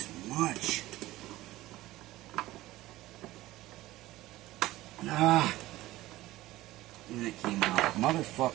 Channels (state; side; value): quieter; left; 17.0 dB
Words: much? And it came out.